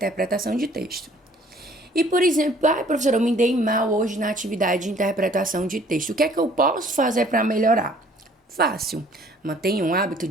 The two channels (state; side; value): normal; both; correlation 0.56